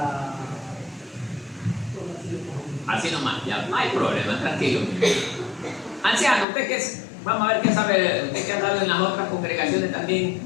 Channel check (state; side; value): drops out; right; at 6.5 s